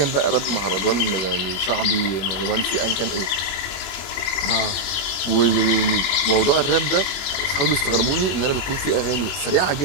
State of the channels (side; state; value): right; late; 21 ms